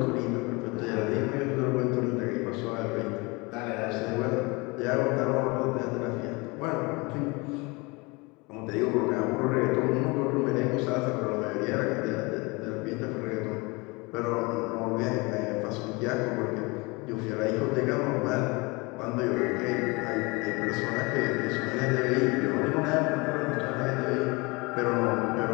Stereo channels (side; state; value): right; quieter; 26.4 dB